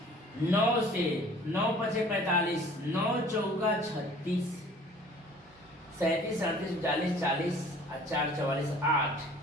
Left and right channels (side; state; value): both; normal; correlation 0.50